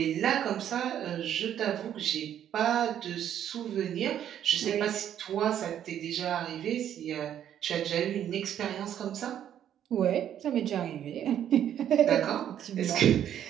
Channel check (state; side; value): quieter; left; 10.2 dB